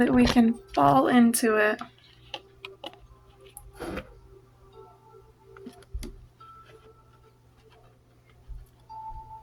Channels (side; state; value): both; identical; correlation 1.00